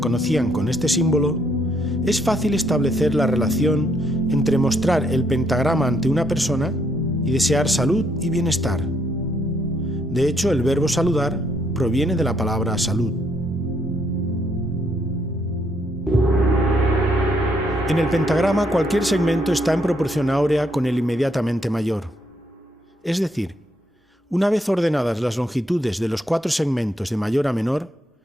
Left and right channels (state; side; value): normal; both; correlation 0.72